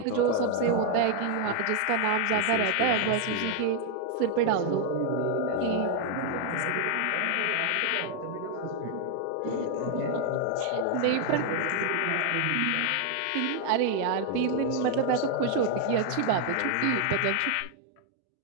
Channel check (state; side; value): different; both; correlation 0.00